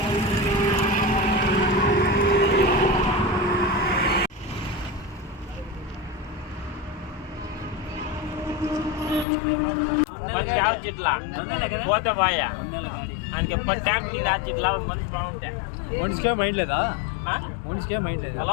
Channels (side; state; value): right; drops out; at 9.2 s